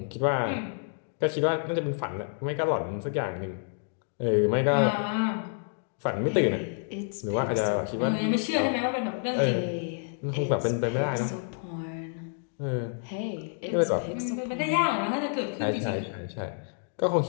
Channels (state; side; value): silent; right; 59 dB below the other